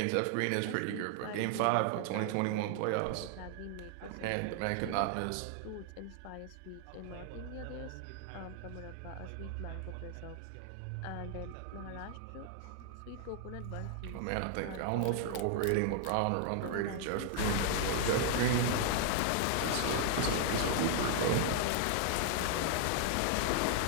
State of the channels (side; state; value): both; different; correlation 0.00